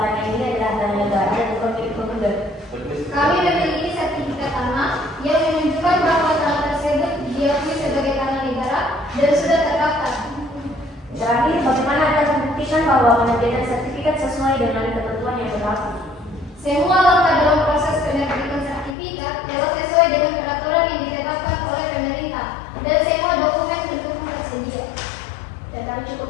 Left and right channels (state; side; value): drops out; right; at 18.9 s